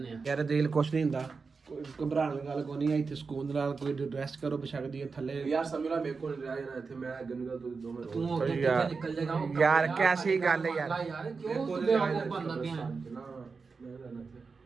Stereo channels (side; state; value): left; quieter; 4.7 dB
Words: ਆ। ਯਾਰ ਦਿਲ ਕੁਛ ਨਹੀਂ ਹੁੰਦਾ, ਕੋਈ ਘਬਰਾਉਣ ਦੀ ਗੱਲ ਕੋਈ ਨਹੀਂ ਹੈ। ਇੱਥੇ ਸਕੂਨ ਦੇ ਨਾਲ ਕੋਈ ਰੈਸਟ ਕਰੋ, ਬਸ਼ੱਕਦੀ ਹੈ ਥੱਲੇ। ਯਾਰ ਸਮੀਲਾ ਮੇਰੇ ਕੋਲ ਨਹੀਂ ਰਿਹਾ ਯਾਰ, ਇੱਥੇ ਮੈਂ ਗੰਗਾ ਤੋਂ ਦੋਵੇਂ ਤੂੰ ਅੱਗੇ ਯਾਰ, ਕਿੱਥੇ ਨਿਕਲ ਜਾਏਗਾ? ਯਾਰ ਕੈਸੀ ਗੱਲ ਹੈ ਯਾਰ। ਯਾਰ ਕਿਉਂ ਤੂੰ ਬੇਵਕੂਫ ਬਣਦਾ ਪਿਆ?